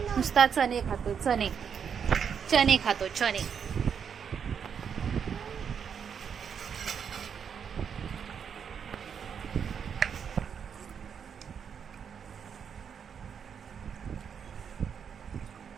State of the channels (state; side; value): quieter; left; 7.3 dB